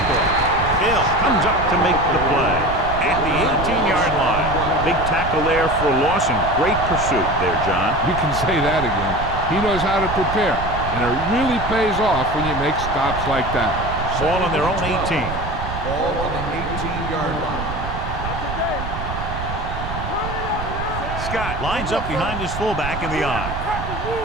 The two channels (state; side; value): noise; right; rumble, 7 dB below the sound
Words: Hill comes up to make the play at the 18-yard line. Big tackle there for Lawson. Great pursuit there, John. You can say that again. He knows how to prepare, and it really pays off when you make stops like that. Ball on their own 18. Ball on the 18-yard line. Scott lines up behind his fullback in the eye.